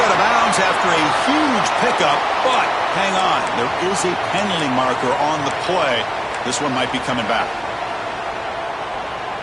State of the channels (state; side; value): identical; both; correlation 1.00